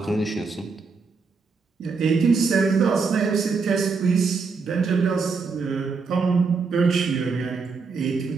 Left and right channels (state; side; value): quieter; left; 4.8 dB